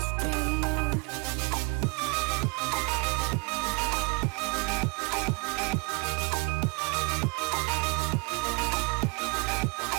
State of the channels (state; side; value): quieter; left; 31.2 dB